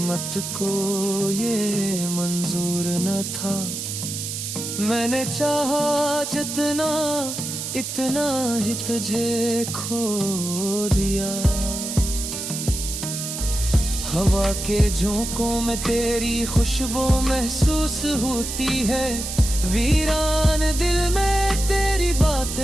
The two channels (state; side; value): noise; right; hiss, 5 dB below the sound